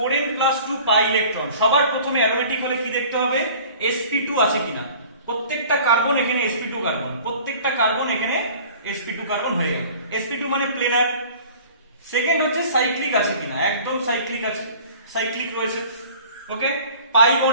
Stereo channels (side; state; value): both; inverted; correlation -0.46